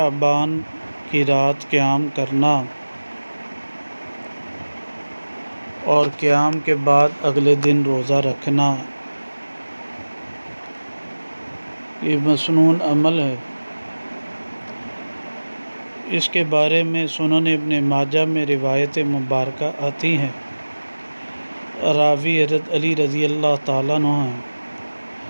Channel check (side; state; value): both; inverted; correlation -1.00